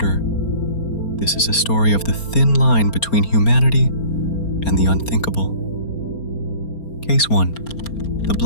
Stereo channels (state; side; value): late; right; 4.3 ms